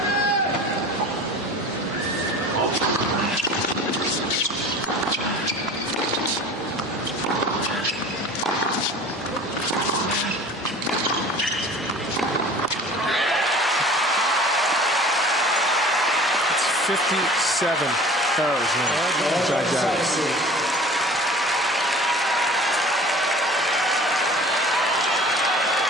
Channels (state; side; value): normal; both; correlation 0.42